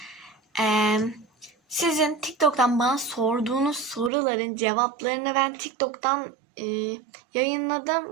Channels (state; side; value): drops out; left; at 4.1 s